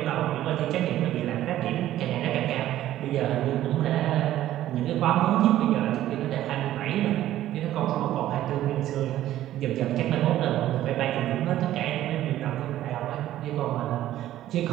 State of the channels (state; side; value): quieter; left; 13.4 dB